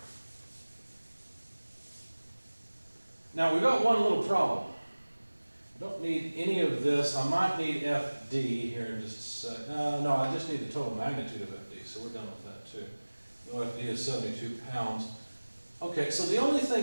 Now, we've got one little problem. I don't need any of this. I might need FD here in just a sec. No, I just need the total magnitude of FD, so we're done with that too. No, FD is 72 pounds. Okay, so the only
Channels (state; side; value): inverted; both; correlation -1.00